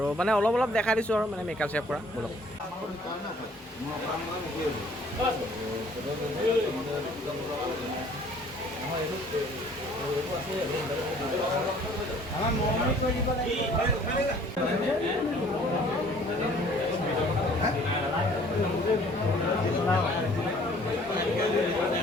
মানে অলপ অলপ দেখাই দিছোঁ আৰু মানে মেকআপ চেকআপ কৰা ব্লগ।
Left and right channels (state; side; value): normal; both; correlation 0.56